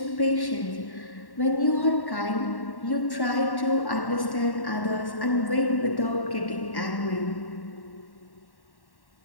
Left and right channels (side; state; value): right; late; 1.1 ms